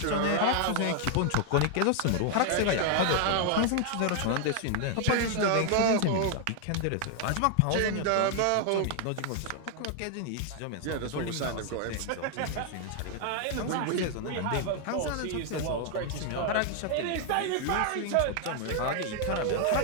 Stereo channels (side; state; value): both; different; correlation 0.00